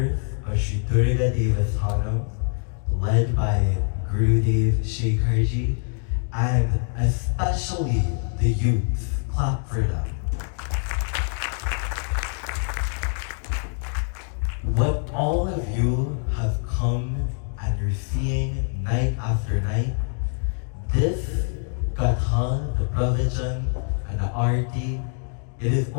of Sri Durga Devasthanam, led by Gurudev Shekharji, and especially the youth. Clap for them. What all of you have come and you're seeing night after night, this Gatha, the Pravachan, and the Arti, it is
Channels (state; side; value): silent; right; 56 dB below the other